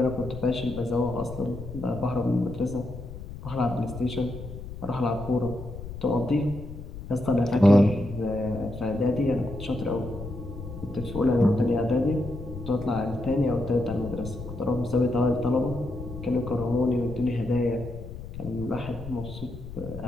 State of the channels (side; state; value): left; noise; rumble, 11 dB below the sound